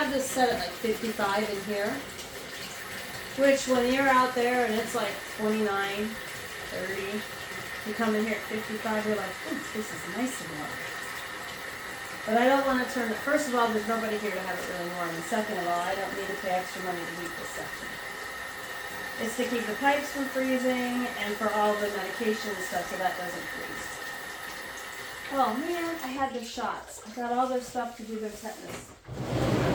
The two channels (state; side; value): identical; both; correlation 1.00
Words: this set at like 55 in here. Which when you're out there and it's like 29, 30, you come in here at 55, you're like, ooh, this is nice and warm. But I don't want to turn it, first of all, there's nobody here to have it really warm. And second of all, I don't need to pay extra money to heat this section. It's to keep the pipes from freezing and for all the medication and stuff so that doesn't freeze. Oh man, I had their shots. I got all their stuff to do their tetanus.